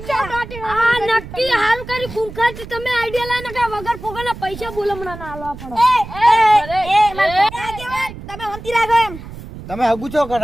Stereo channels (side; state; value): right; noise; rumble, 13 dB below the sound